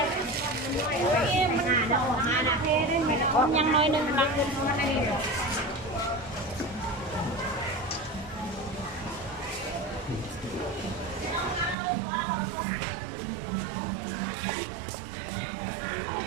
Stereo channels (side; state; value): left; drops out; at 11.8 s